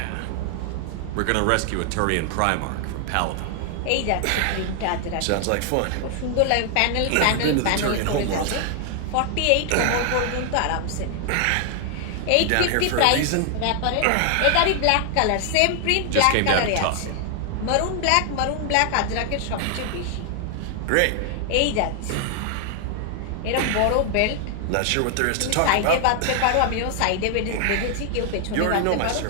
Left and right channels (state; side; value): different; both; correlation 0.00